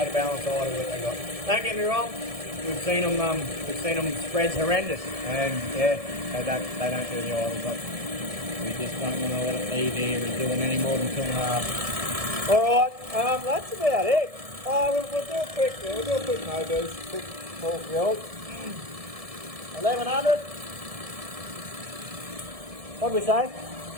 of balance idle that they got. Don't get me wrong. We've seen them spreads horrendous, and yeah, they don't do the idle, but we just don't want to let it be there. We're doing any more than 2.5. All right, that's about it. We'll do a quick no boost, quick full field. 1100. What did we say?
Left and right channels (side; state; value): left; late; 1.7 ms